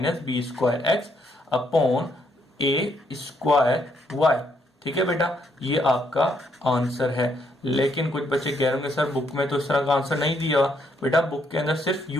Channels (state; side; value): normal; both; correlation 0.73